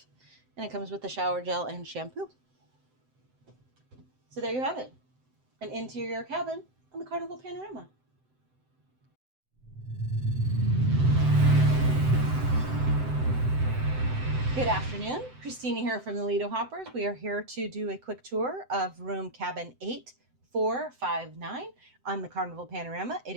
And it comes with the shower gel and shampoo. So there you have it. An interior cabin on the Carnival Panorama. Good afternoon. Christina here from the Lido Hoppers. We are here to do a quick tour of room cabin 8459 on the Carnival Panorama. It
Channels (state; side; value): late; left; 7.8 ms